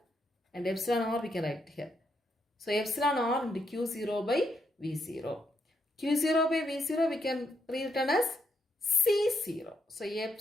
and epsilon R we can write it here. So epsilon R into Q0 by V0. Q0 by V0 we can rewritten as C0. So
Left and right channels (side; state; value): both; normal; correlation 0.79